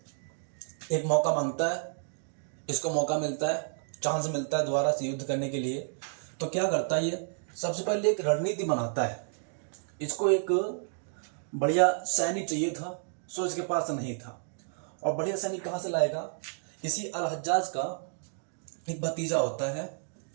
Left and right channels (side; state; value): left; silent; digital silence